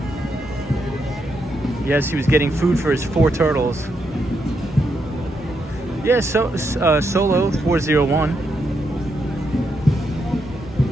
Yes, he was getting food for his 4 turtles. Yeah, so Solo 401.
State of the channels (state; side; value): normal; both; correlation 0.81